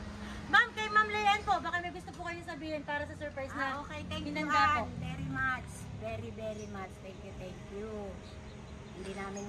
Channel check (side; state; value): both; identical; correlation 1.00